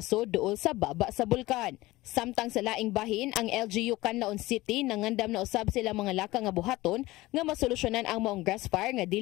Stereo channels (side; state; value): right; quieter; 18.9 dB